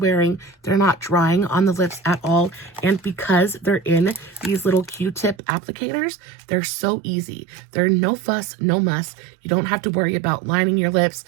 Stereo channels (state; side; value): drops out; left; at 5.4 s